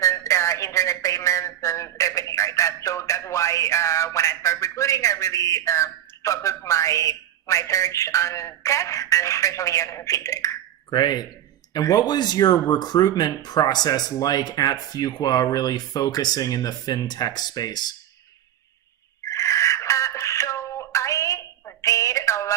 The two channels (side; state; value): left; quieter; 11.4 dB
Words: and internet payments and everything like that. So that's why when I started recruiting, I really focused my search on tech and especially on fintech. Great. And what was your recruitment process like at Fuqua, really focusing in the fintech space? Did a